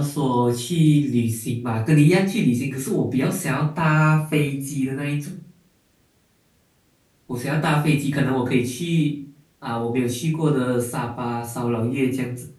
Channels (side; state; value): both; identical; correlation 1.00